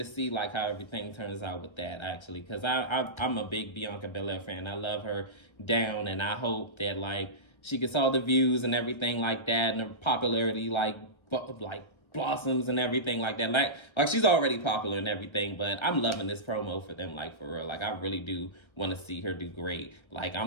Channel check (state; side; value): late; right; 1.3 ms